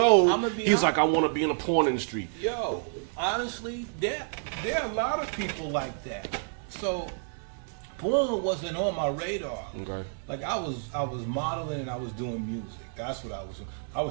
he's like, I want to be in the porn industry. Yo, honestly, there are a lot of people like that. So porn wasn't on my radar. Okay. Like I was modeling and I was doing music. That's what I was doing. I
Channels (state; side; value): silent; left; 56 dB below the other